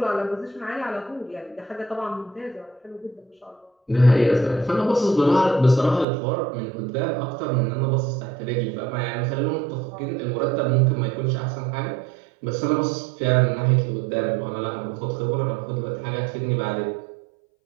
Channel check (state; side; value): drops out; left; at 6.1 s